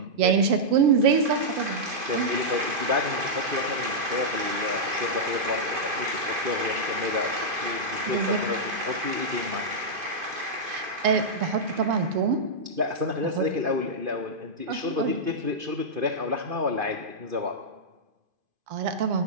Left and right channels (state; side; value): late; left; 2.5 ms